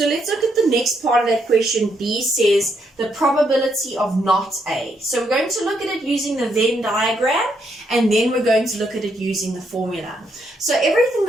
let's look at the next part of that question. B says the probability of not A. So we're going to look at it using the Venn diagram, and then we're going to look at it using the formula. So everything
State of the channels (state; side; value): normal; both; correlation 0.76